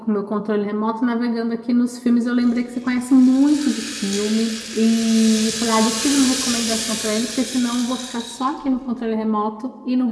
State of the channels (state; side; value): identical; both; correlation 1.00